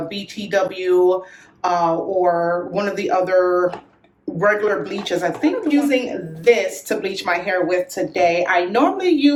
BTW or one of the other regular bleaches, I think I'm using this to bleach my hair with today. I normally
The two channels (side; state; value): both; identical; correlation 1.00